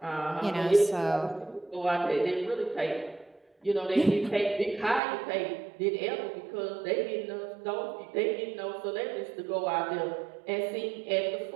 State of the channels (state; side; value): drops out; left; at 5.0 s